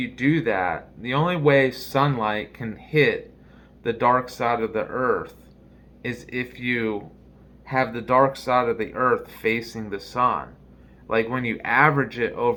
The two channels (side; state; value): both; identical; correlation 1.00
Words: do that, the only way sunlight can hit the dark side of the earth is if you have the dark side of the earth facing the sun. Like when you average it